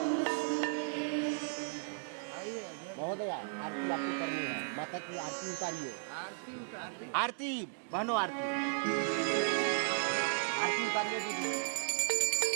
महोदया आरती आपको करनी है, माता की आरती उतारिए। आरती बहनों, आरती उतारिए दीदी।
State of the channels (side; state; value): left; silent; digital silence